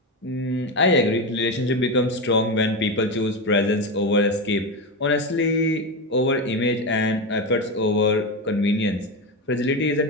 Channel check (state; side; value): normal; both; correlation 0.15